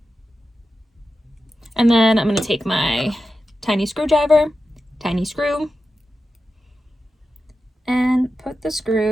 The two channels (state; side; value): normal; both; correlation 0.91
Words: And then I'm gonna take my tiny screwdriver, tiny screw, and put the